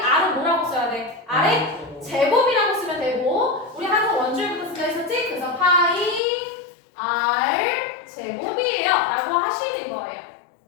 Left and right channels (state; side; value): drops out; right; at 6.2 s